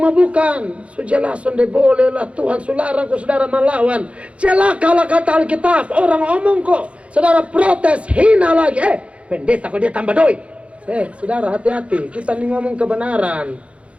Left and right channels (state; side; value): late; left; 0.062 ms